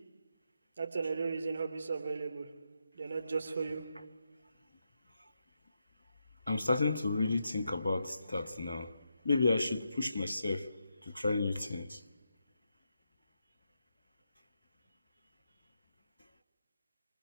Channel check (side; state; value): both; inverted; correlation -0.84